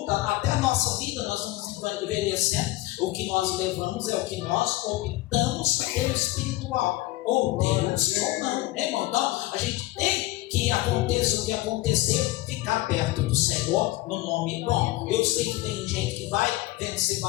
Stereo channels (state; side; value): quieter; right; 18.0 dB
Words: até a nossa vida, nós vamos envelhecendo. O que nós levamos é o que nós optamos pelo espiritual, ou Deus ou não, né, irmão? Então a gente tem que, aconteça o que acontecer, ficar perto do Senhor. Senhor no nome bom. Eu sei que tem gente que vai vencer